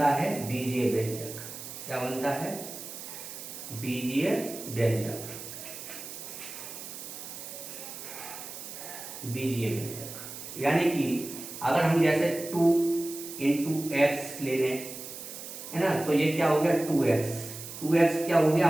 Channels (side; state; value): right; noise; hiss, 11 dB below the sound